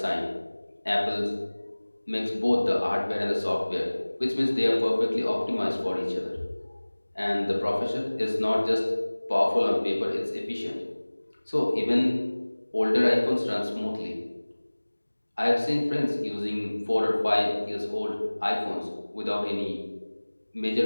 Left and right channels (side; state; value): both; inverted; correlation -1.00